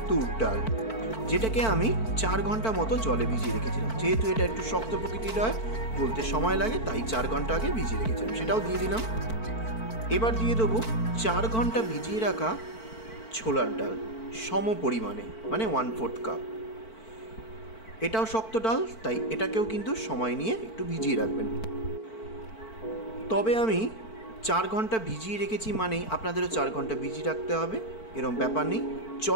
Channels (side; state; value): right; late; 4.5 ms